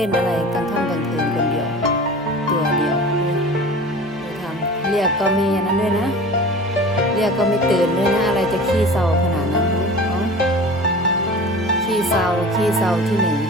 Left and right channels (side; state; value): both; normal; correlation 0.38